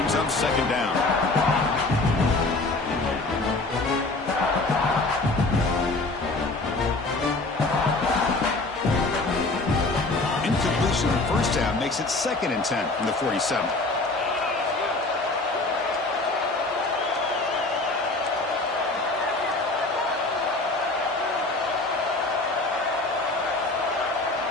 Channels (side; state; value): right; quieter; 3.1 dB